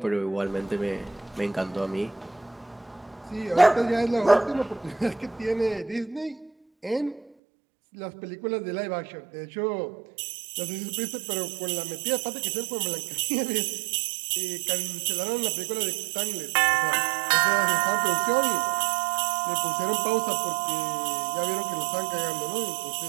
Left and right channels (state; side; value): drops out; left; at 7.3 s